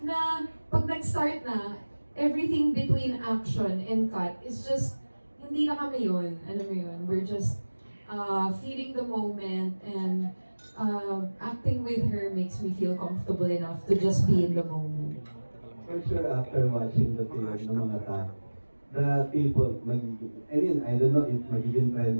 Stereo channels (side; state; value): both; inverted; correlation -1.00